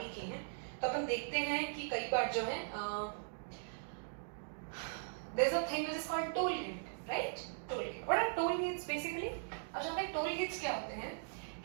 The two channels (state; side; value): silent; left; digital silence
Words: किए हैं तो अपन देखते हैं कि कई बार जो है there is a thing which is called toll gate, right? Toll gate. What are toll gates basically? अब जानते हैं टोल गेट्स क्या होते हैं